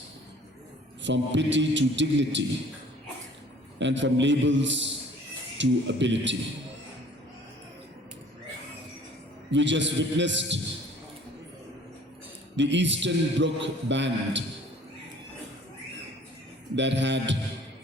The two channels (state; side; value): normal; both; correlation 0.52